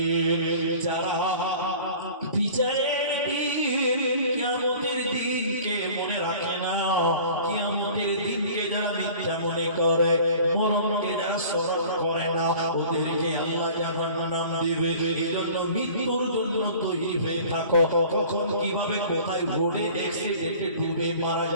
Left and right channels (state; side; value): inverted; both; correlation -0.46